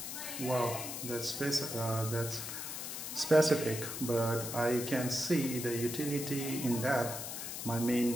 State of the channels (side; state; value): left; noise; hiss, 6 dB below the sound